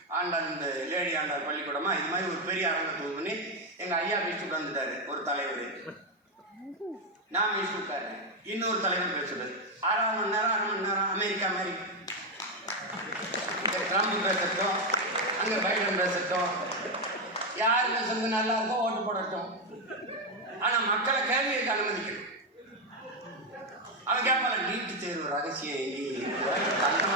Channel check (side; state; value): both; normal; correlation 0.06